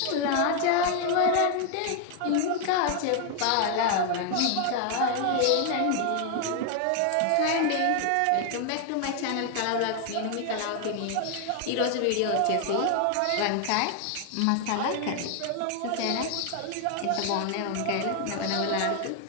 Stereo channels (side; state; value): both; different; correlation 0.00